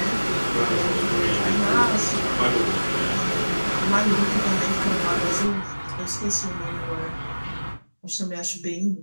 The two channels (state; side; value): inverted; both; correlation -1.00